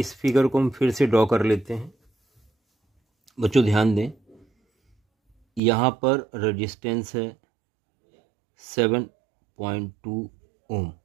फिगर को हम फिर से ड्रॉ कर लेते हैं। बच्चों ध्यान दें, यहाँ पर रेजिस्टेंस है 7.2 ओम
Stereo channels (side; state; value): left; drops out; at 5.6 s